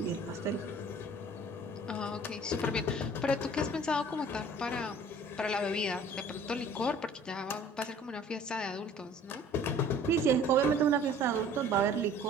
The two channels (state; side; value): normal; both; correlation 0.50